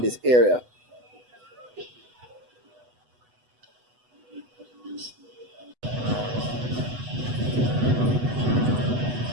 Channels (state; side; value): late; left; 8.1 ms